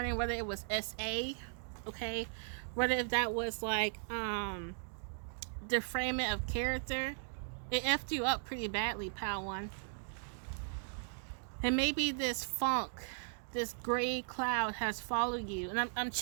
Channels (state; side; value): silent; left; digital silence